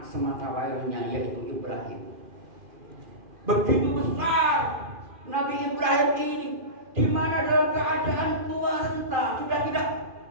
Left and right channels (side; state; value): left; late; 2.5 ms